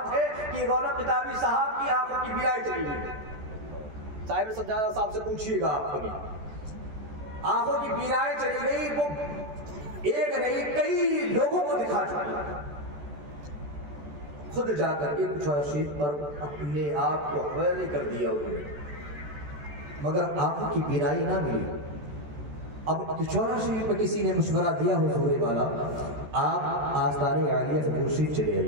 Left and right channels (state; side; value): late; left; 14 ms